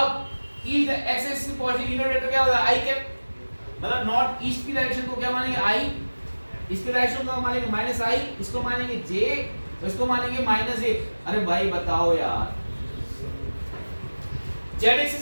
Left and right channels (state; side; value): inverted; both; correlation -1.00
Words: ईस्ट एक्सिस की पॉजिटिव यूनिट वेक्टर क्या होगा? आई कैप। मतलब नॉर्थ ईस्ट की डायरेक्शन को क्या मानेंगे? आई। इसकी डायरेक्शन को मानेंगे माइनस आई, इसको मानेंगे जे, इसको मानेंगे माइनस ए। अरे भाई बताओ यार, जेड